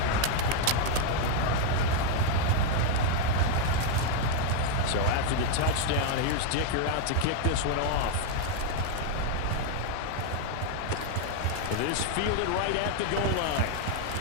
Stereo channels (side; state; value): both; different; correlation 0.00